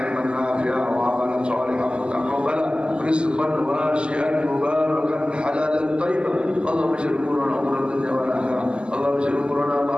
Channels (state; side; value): late; left; 0.049 ms